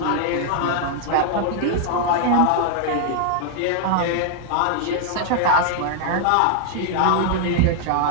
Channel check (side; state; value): both; different; correlation 0.00